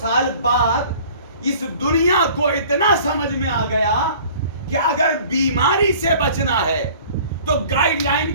بعد اس دنیا کو اتنا سمجھ میں آ گیا کہ اگر بیماری سے بچنا ہے تو گائیڈ لائن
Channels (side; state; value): both; inverted; correlation -0.48